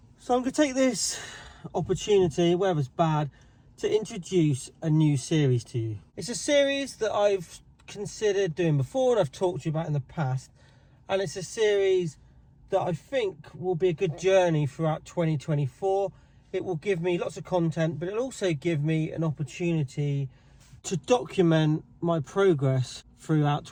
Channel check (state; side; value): identical; both; correlation 1.00